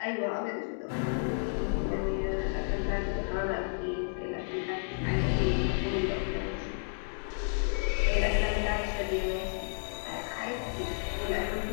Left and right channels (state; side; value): silent; right; digital silence